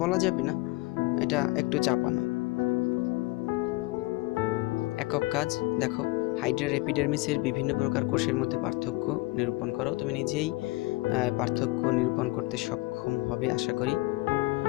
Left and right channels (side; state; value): right; quieter; 21.9 dB